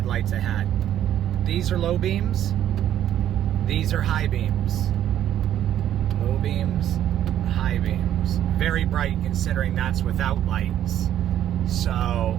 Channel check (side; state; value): left; quieter; 11.2 dB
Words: I had. These are low beams. These are high beams. Low beams, high beams. Very bright considering that's without lights. So